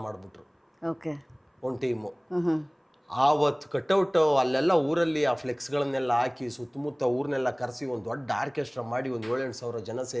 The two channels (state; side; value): identical; both; correlation 1.00